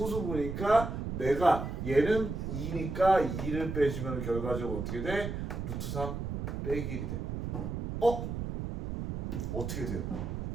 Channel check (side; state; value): right; noise; rumble, 4 dB below the sound